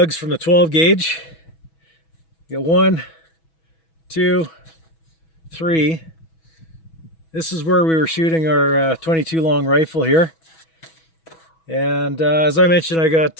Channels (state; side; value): late; right; 6.1 ms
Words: from the 12 gauge. You got 1, 2, 3. This is where we were shooting our 22 long rifle here. And as I mentioned, I